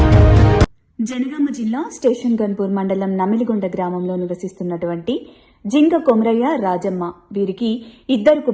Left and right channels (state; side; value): identical; both; correlation 1.00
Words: జనగామ జిల్లా స్టేషన్ గన్పూర్ మండలం నమిలిగొండ గ్రామంలో నివసిస్తున్నటువంటి జింక కొమరయ్య, రాజమ్మ వీరికి 2